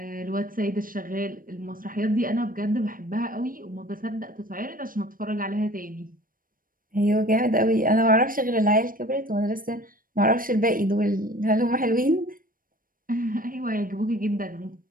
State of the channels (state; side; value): late; left; 0.41 ms